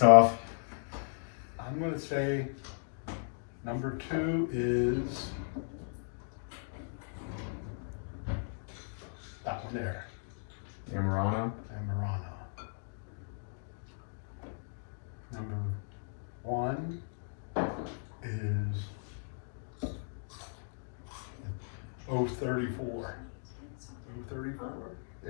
I'm gonna say number 2 is that one there, Amarano. Amarano. Number 1 is 034. 034?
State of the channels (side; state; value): right; silent; digital silence